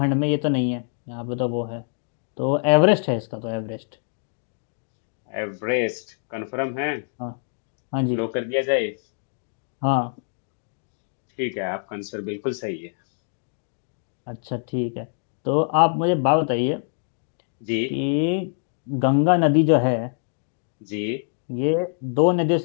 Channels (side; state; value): right; silent; digital silence